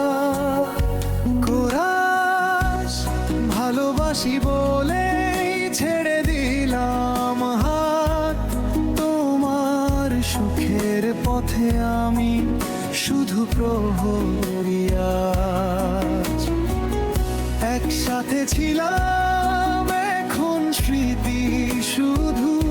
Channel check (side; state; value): both; identical; correlation 1.00